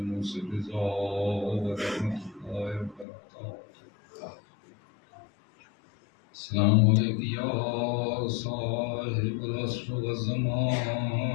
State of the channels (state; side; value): drops out; right; at 3.1 s